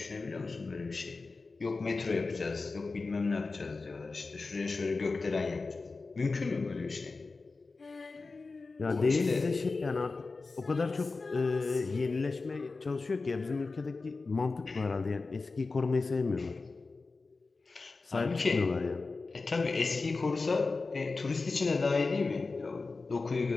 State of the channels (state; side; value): quieter; right; 3.9 dB